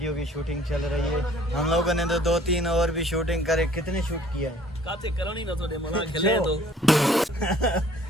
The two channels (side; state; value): both; normal; correlation 0.55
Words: की शूटिंग चल रही है। हम लोगों ने तो 2-3 और भी शूटिंग करे। कितने शूट किया है? काते करनी ना थोड़े मना खेले तो